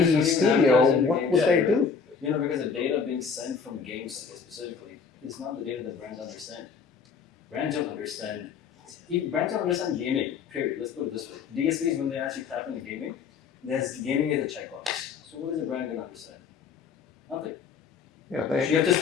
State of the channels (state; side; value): quieter; right; 5.9 dB